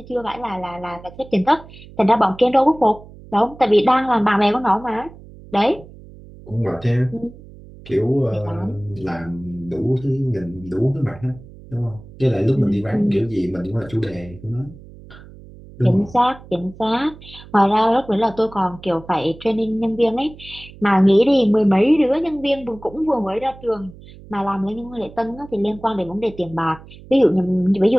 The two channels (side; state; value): right; noise; hum, 19 dB below the sound